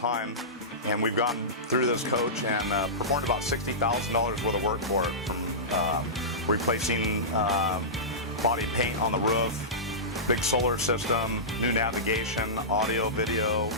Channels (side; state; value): both; normal; correlation -0.17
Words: and we've gone through this coach and performed about $60,000 worth of work for it, from replacing body paint on the roof, big solar system, new navigation, audio, video,